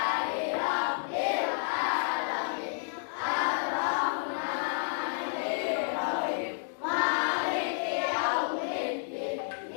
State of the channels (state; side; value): silent; right; digital silence